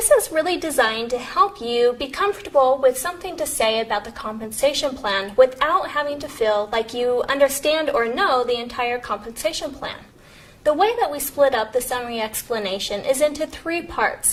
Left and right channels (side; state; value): both; identical; correlation 1.00